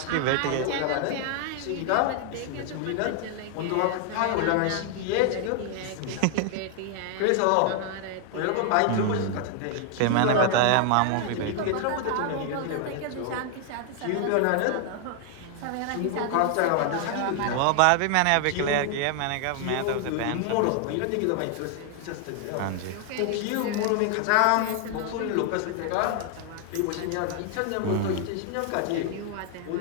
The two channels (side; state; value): both; different; correlation 0.00